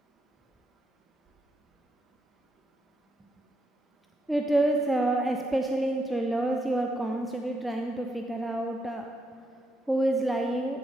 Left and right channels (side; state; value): both; normal; correlation 0.79